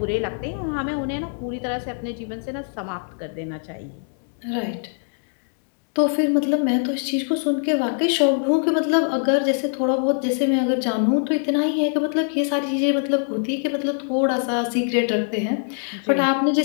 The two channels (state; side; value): silent; right; 63 dB below the other